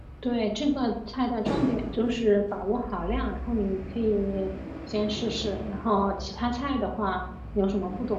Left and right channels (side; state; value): both; identical; correlation 1.00